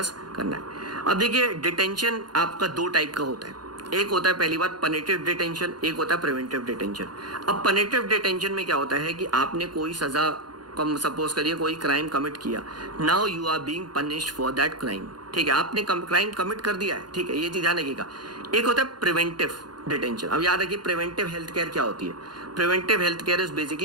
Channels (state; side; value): late; left; 0.71 ms